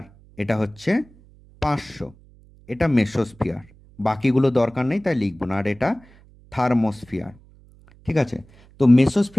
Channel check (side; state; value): right; noise; hum, 26 dB below the sound